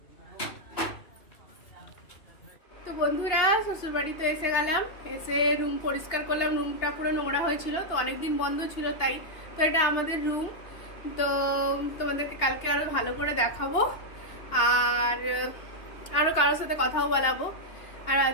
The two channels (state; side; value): late; right; 2.8 ms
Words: তো বন্ধুরা শ্বশুর বাড়িতে এসে গেলাম, এসে রুম পরিষ্কার করলাম। রুমটা পুরো নোংরা হয়েছিল, তো অনেকদিন বন্ধ ছিল তাই। তো এটা আমাদের রুম। তো তোমাদেরকে কালকে আরও ভালো করে দেখাবো, আর আরও কারোর সাথে কথাও বলাবো, আর